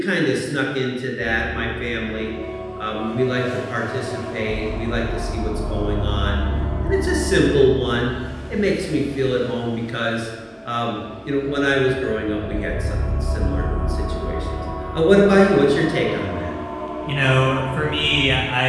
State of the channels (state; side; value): identical; both; correlation 1.00